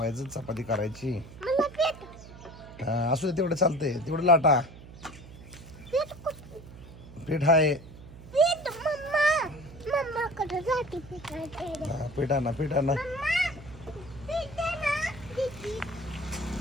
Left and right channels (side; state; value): right; noise; hum, 17 dB below the sound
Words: चपाती करायची. असू दे तेवढं चालतंय. तेवढं लाटा पीठ आहे. पीठ आणा पीठ आणा.